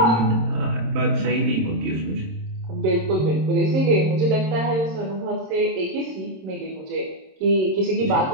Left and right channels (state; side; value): late; left; 27 ms